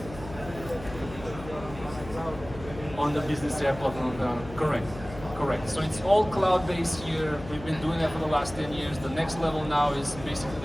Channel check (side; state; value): left; noise; hum, 14 dB below the sound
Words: On the Business AI platform, correct. So it's all cloud-based here. We've been doing that for the last 10 years. The next level now is basically